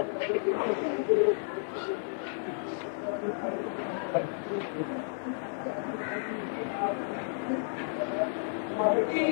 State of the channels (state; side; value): silent; right; digital silence